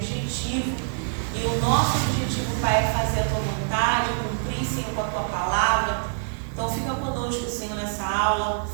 E o nosso objetivo, Pai, é fazer a tua vontade, cumprir, Senhor, com a tua palavra. Então fica conosco, Senhor, nessa aula.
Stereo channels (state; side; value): silent; left; digital silence